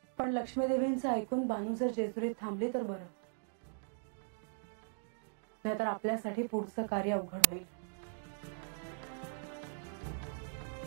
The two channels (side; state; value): left; silent; digital silence